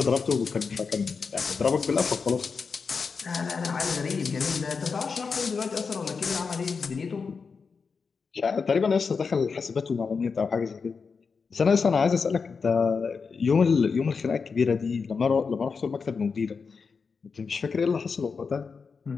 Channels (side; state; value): right; quieter; 5.3 dB